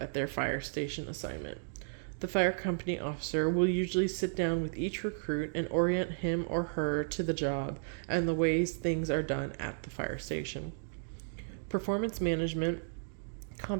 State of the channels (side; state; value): left; silent; digital silence